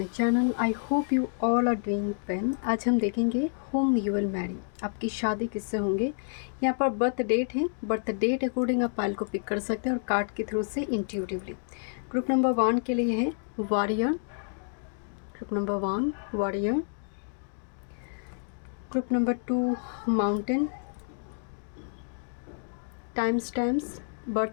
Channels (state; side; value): silent; right; digital silence